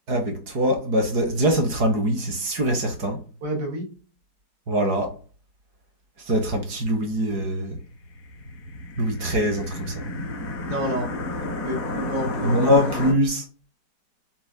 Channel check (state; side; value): late; left; 4.8 ms